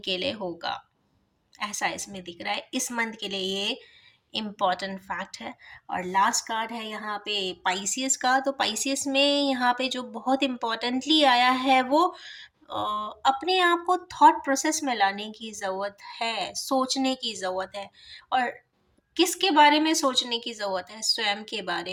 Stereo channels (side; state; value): both; identical; correlation 1.00